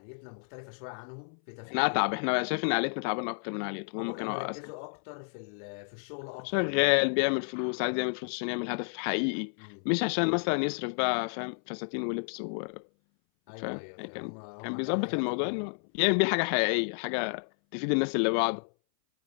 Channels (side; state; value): right; silent; 57 dB below the other